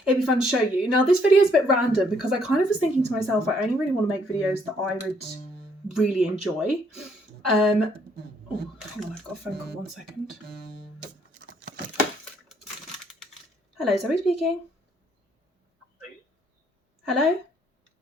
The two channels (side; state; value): both; normal; correlation 0.68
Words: it'd be fun to show you. Now this video is a bit random because I kind of was thinking to myself, I only really want to make videos that I would really enjoy. Oh, hang on, I've got a phone call, 1 second. Hello, Zoe speaking. Hello?